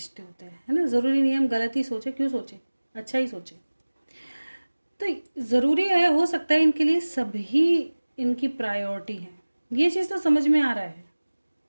होते हैं, है ना। ज़रूरी नहीं है हम गलत ही सोचें, क्यों सोचें, अच्छा ही सोचें। तो ज़रूरी है, हो सकता है इनके लिए सभी इनकी प्रायोरिटी है, ये चीज़ तो समझ में आ रहा है,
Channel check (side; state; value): both; inverted; correlation -1.00